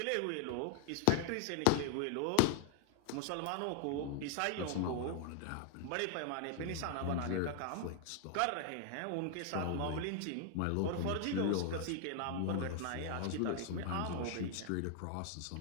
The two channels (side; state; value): both; different; correlation 0.00